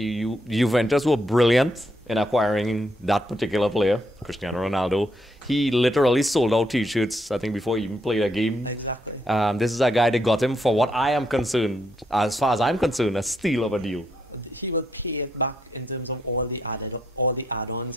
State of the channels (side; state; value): both; normal; correlation 0.76